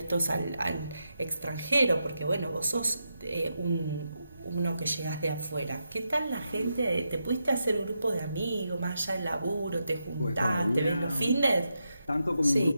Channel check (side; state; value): both; inverted; correlation -0.85